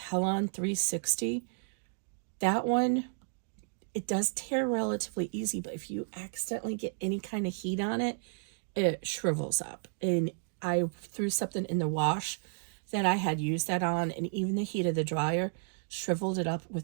360. That one, it does tear relatively easy, but if you accidentally get any kind of heat on it, it shrivels up. And I threw something in the wash that I had used that on, and even the heat of the dryer shriveled it up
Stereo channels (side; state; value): left; silent; digital silence